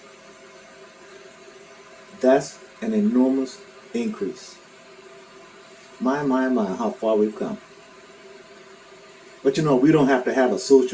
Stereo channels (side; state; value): both; identical; correlation 1.00